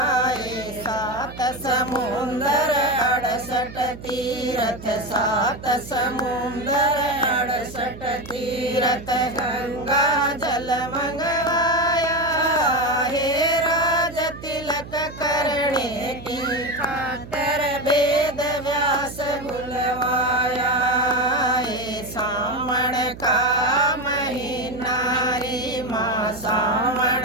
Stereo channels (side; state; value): right; noise; hum, 14 dB below the sound